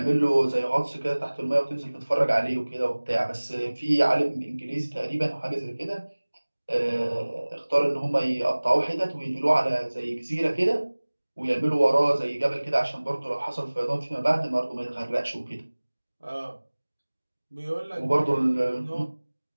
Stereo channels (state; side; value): inverted; both; correlation -1.00